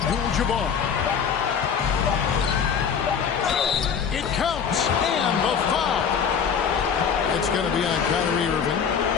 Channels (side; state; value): right; quieter; 6.9 dB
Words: It counts. And the foul. It's going to be on Kyrie Irving.